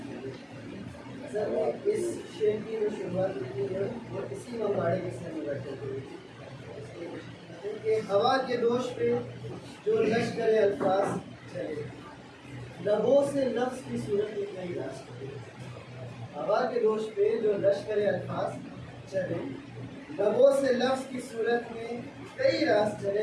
سر نے اس شعر کی جو شروعات کی ہے وہ اسی مواڑے کے سر میں بیٹھے ہوئے کہ ہوا کے دوش پہ جو لشکر الفاظ چلے، لبوں سے لفظ کی صورت میں کئی راز چلے۔ ہوا کے دوش پہ جو لشکر الفاظ چلے، لبوں سے لفظ کی صورت میں کئی راز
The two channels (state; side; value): identical; both; correlation 1.00